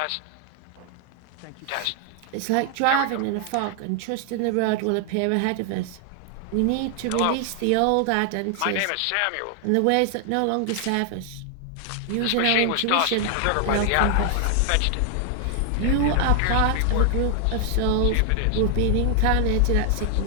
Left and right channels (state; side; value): different; both; correlation 0.00